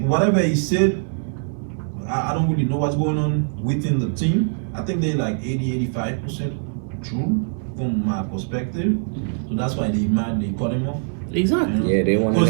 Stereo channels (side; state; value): left; silent; 64 dB below the other